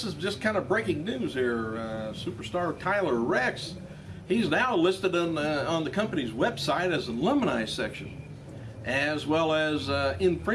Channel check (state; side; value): identical; both; correlation 1.00